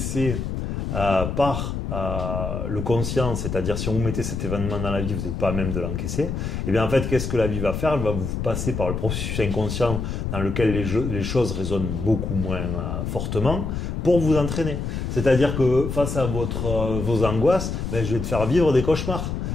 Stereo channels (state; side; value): noise; left; rumble, 3 dB below the sound